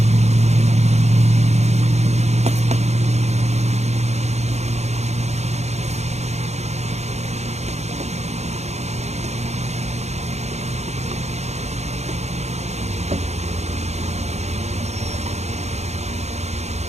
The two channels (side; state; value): left; late; 0.32 ms